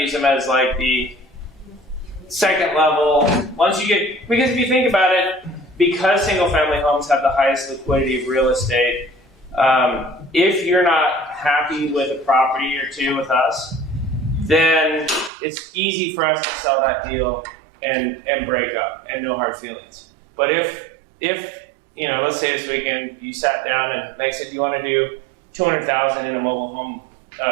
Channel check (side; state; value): left; drops out; at 15.3 s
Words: them as like the second level. Once you get, because if you think about it, because single family homes have the highest liquidity of real estate, if you're not happy with a property or two with us, then it's easy for us to sell that deal and break up and no hard feelings. But if let's say this weekend you sat down and Meg said, do you want to do $200,000 in a mobile home